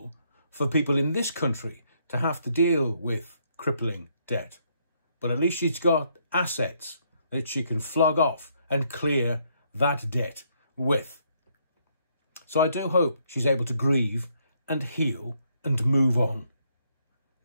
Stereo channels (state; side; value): inverted; both; correlation -0.72